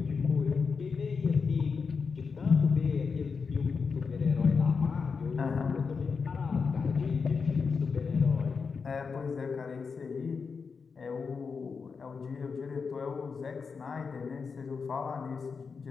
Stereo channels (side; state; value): right; quieter; 5.3 dB